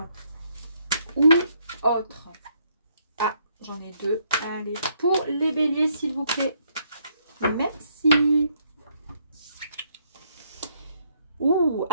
ou autre. Ah, j'en ai deux. Allez, pour les béliers, s'il vous plaît. Merci. Ouh,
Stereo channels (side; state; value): both; inverted; correlation -0.71